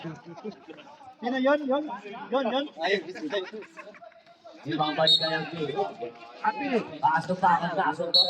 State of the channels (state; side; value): identical; both; correlation 1.00